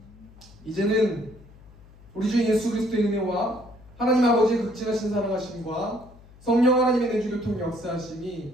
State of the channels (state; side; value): noise; left; hum, 23 dB below the sound